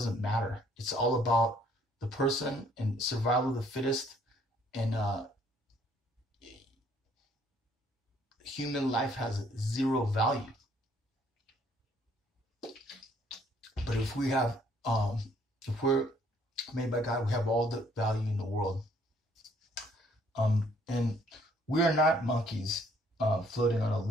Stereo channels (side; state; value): both; normal; correlation 0.63